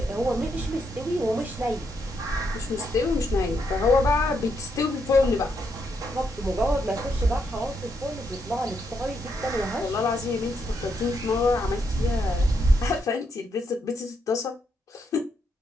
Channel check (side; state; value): both; normal; correlation 0.78